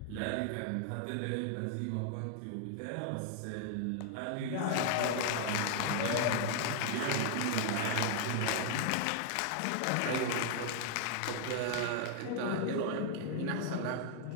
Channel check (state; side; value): different; both; correlation 0.00